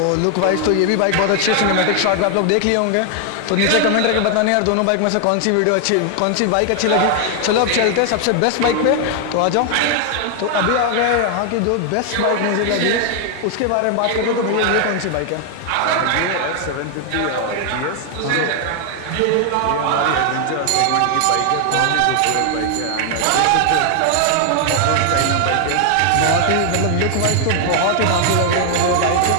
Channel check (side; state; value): both; different; correlation 0.00